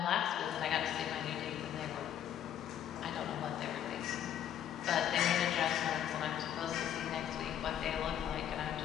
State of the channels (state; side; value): quieter; right; 10.2 dB